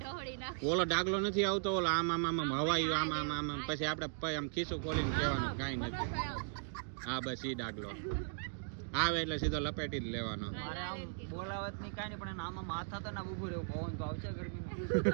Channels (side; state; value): left; silent; digital silence